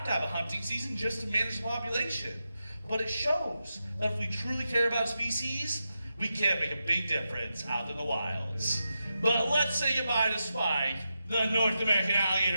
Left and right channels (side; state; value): both; inverted; correlation -0.88